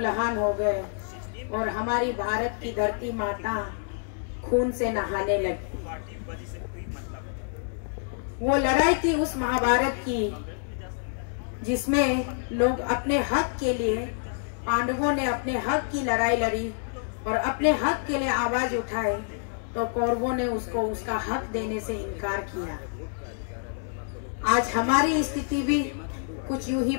हो गए और हमारी भारत की धरती माता खून से नहाने लगी। वो लड़ाई थी उस महाभारत की जिसमें लोग अपने हक के लिए, पांडवों ने अपने हक की लड़ाई लड़ी और अपने हक के लिए आवाज उठाए तो कौरवों ने उसको उसका हक देने से इनकार किया। आज हमारी स्थिति भी कुछ यूं ही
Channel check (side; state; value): right; silent; digital silence